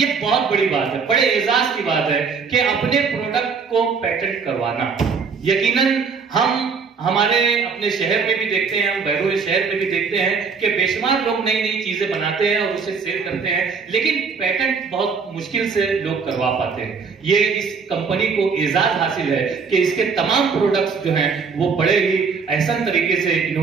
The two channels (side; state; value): left; quieter; 5.5 dB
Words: बहुत बड़ी बात है, बड़े एजाज की बात है कि अपने प्रोडक्ट को पेटेंट करवाना। यकीनन हम हमारे अपने शहर में भी देखते हैं, हम बैरूनी शहर में भी देखते हैं कि बेशुमार लोग नई नई चीजें बनाते हैं और उसे सेल करते हैं, लेकिन पेटेंट बहुत मुश्किल से लोग करवा पाते हैं। ये इस कंपनी को एजाज हासिल है कि इसके तमाम प्रोडक्ट्स जो हैं वो बड़े ही एहसन तरीके से